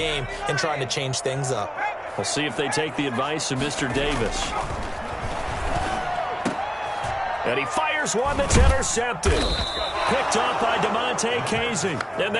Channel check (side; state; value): both; identical; correlation 1.00